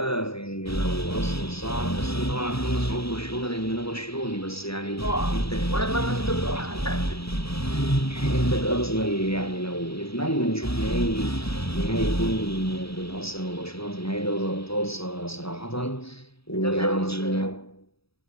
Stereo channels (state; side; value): late; right; 0.77 ms